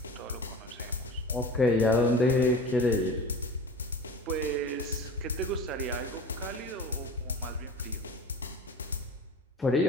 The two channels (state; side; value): normal; both; correlation 0.37